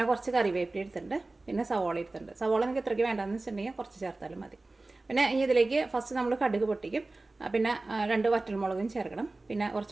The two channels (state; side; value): quieter; left; 3.2 dB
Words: കുറച്ച് കറിവേപ്പില എടുത്തിട്ടുണ്ട്, പിന്നെ സവോള എടുത്തിട്ടുണ്ട്. സവോള നിങ്ങൾക്ക് എത്രയ്ക്ക് വേണ്ടെന്ന് വെച്ചിട്ടുണ്ടെങ്കിൽ കുറച്ച് ചേർത്താലും മതി. പിന്നെ ഇതിലേക്ക് ഫസ്റ്റ് നമ്മൾ കടുക് പൊട്ടിക്കും, പിന്നെ 2 വറ്റൽമുളകും ചേർക്കണം, പിന്നെ